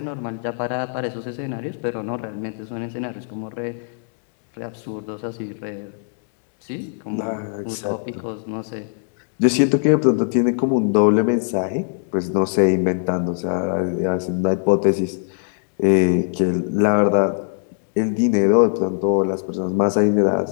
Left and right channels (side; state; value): right; silent; digital silence